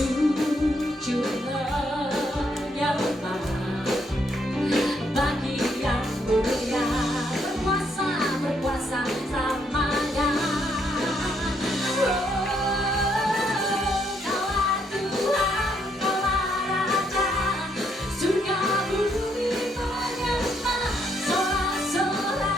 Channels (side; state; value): both; normal; correlation 0.73